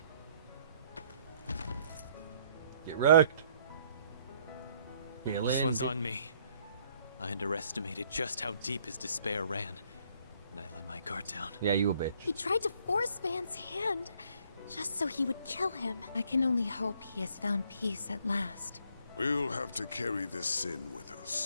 Get wrecked. This one's on me. I underestimated just how deep his despair ran, and I let my guard down. Yeah, you a bitch. He tried to force Van's hand, just so he would kill him. I can only hope he has found peace at last. We'll have to carry this sin with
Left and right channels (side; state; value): both; inverted; correlation -0.65